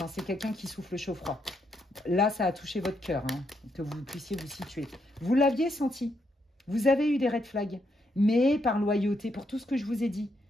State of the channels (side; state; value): both; normal; correlation 0.78